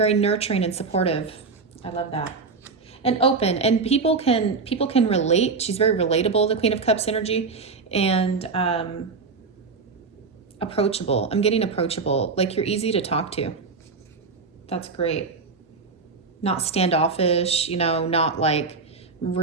nurturing and supportive. I love that. And open, and people can relate. She's very relatable, the Queen of Cups energy, and approachable. I'm getting approachable, like you're easy to talk to. That's great. Not standoffish, not like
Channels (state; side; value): quieter; left; 4.5 dB